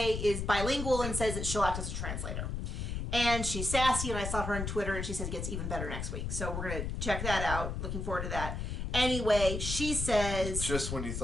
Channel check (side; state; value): left; noise; rumble, 3 dB below the sound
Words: is bilingual and says that she'll act as a translator. And she's sassy, and I saw her on Twitter, and she says it gets even better next week. So we're going to check that out. Looking forward to that. Anyway, she says... Just when you